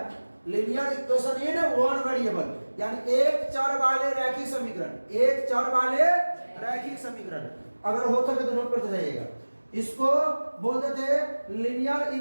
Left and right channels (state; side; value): inverted; both; correlation -1.00